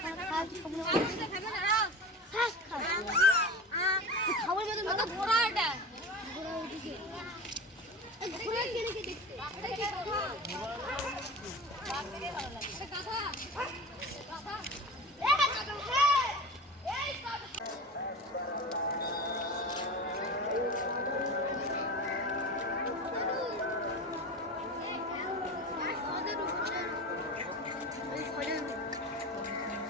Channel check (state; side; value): normal; both; correlation 0.31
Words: খাবার মতো ঘোড়া এটা ঘোড়া ওদিকে ঘোড়া কেন কে দেখতে